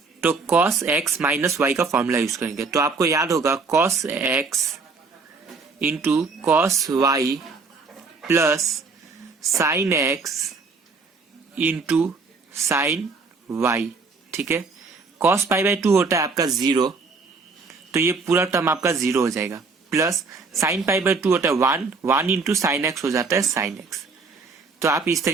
तो cos x -y का फॉर्मूला यूज करेंगे। तो आपको याद होगा cos x into cos y plus sin x into sin y। ठीक है, cos π/2 होता है आपका 0, तो ये पूरा टर्म आपका 0 हो जाएगा, प्लस sin π/2 होता है 1, 1 इंटू साइन एक्स हो जाता है sin x। तो आप इस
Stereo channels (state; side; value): quieter; left; 4.4 dB